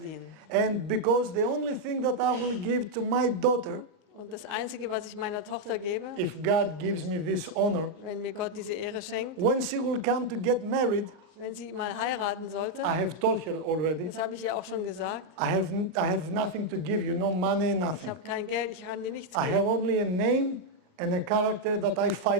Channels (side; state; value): left; late; 39 ms